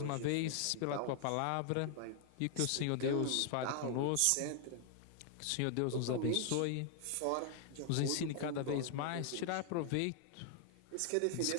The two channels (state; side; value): different; both; correlation 0.00